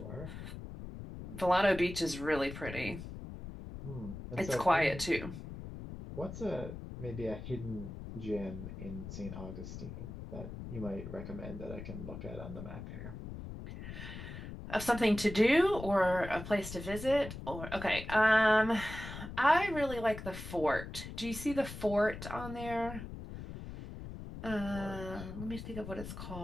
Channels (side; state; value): left; noise; rumble, 10 dB below the sound